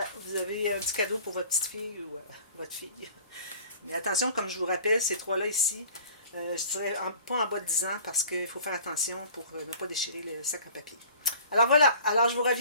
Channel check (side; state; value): both; inverted; correlation -0.47